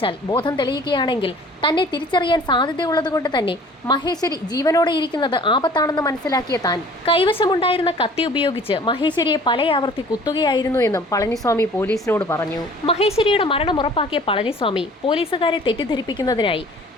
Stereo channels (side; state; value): both; normal; correlation 0.50